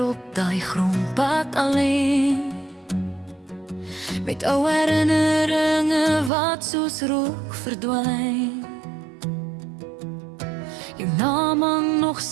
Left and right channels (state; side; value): drops out; left; at 6.3 s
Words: op daai grondpad alleen, met ou herinneringe wat soos rook verdwyn. Jou naam hang nog